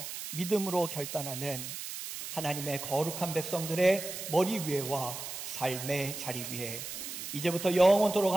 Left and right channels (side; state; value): right; noise; hiss, 8 dB below the sound